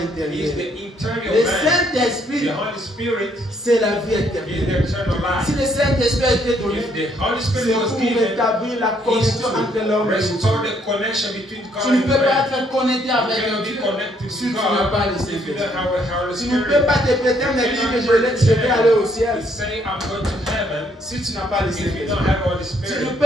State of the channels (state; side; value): normal; both; correlation 0.69